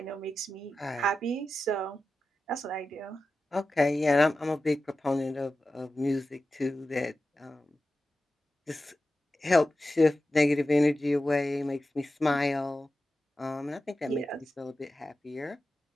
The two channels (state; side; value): normal; both; correlation 0.93